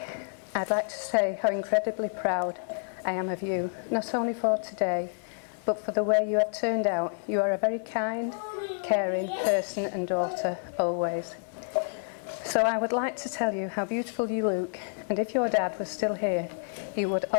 I'd like to say how incredibly proud I am of you, not only for today, but for the way you have turned out. You are a very kind, caring person and daughter, always. So I would like to tell you how beautiful you look, and if your dad was still here, he would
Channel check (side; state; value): right; silent; digital silence